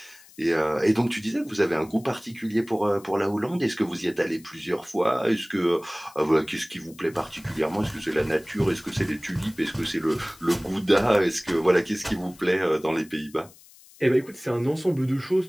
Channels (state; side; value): noise; left; hiss, 24 dB below the sound